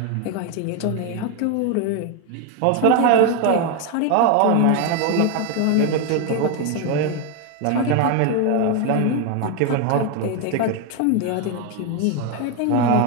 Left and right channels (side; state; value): both; different; correlation 0.01